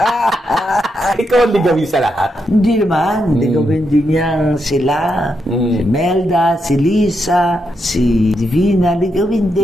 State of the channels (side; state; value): both; normal; correlation 0.82